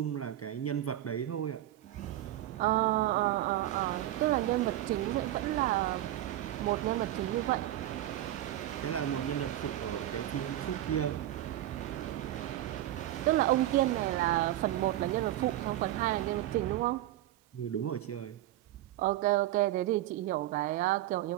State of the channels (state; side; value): quieter; left; 14.0 dB